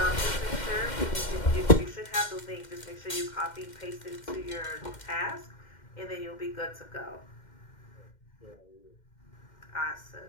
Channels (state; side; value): late; right; 2.1 ms